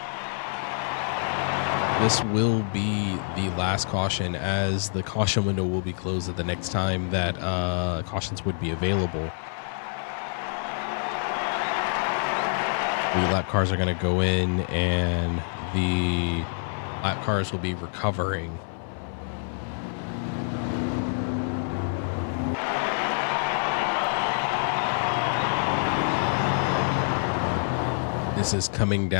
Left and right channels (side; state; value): right; silent; digital silence